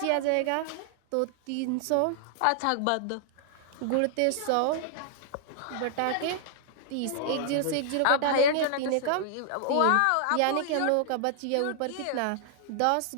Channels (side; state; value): both; different; correlation -0.01